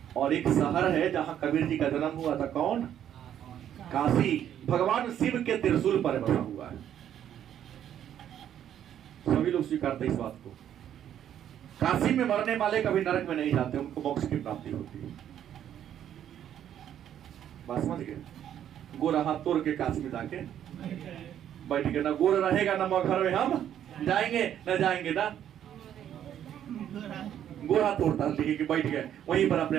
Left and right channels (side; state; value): left; quieter; 10.3 dB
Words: और एक शहर है जहां कबीर जी का जन्म हुआ था, कौन? काशी। भगवान शिव के त्रिशूल पर बसा हुआ है। सभी लोग स्वीकारते इस बात को। काशी में मरने वाले कभी नरक में नहीं जाते, उनको मोक्ष की प्राप्ति होती है। बात समझ गए? गोरा हाथ तोड़ के काशी में जाके बैठ के, ना गोर रहेगा ना मगहर में हम जाएंगे, ना जाएंगे ना गोरा तोड़ता, लेके बैठ गए वहीं पर अपने